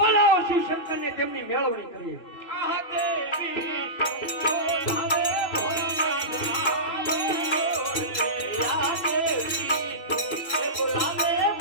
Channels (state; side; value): late; right; 2.6 ms